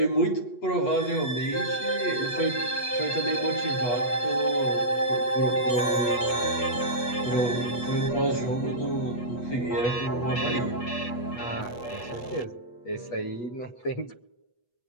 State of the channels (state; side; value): late; right; 8.3 ms